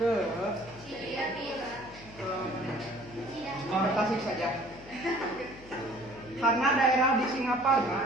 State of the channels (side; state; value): left; noise; hum, 19 dB below the sound